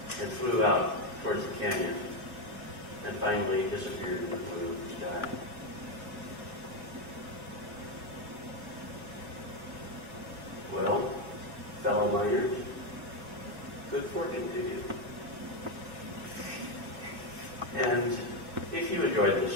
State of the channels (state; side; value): late; left; 2.6 ms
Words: and flew out towards the canyon and finally disappeared in the blue of the sky. Well, fellow miners, good fortune to you. And if you enjoyed this